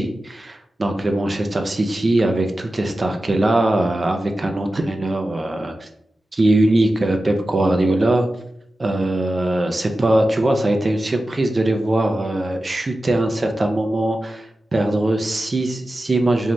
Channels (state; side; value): normal; both; correlation 0.93